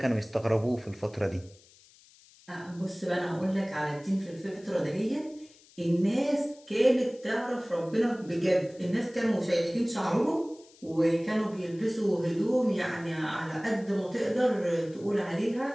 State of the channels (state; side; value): noise; left; hiss, 26 dB below the sound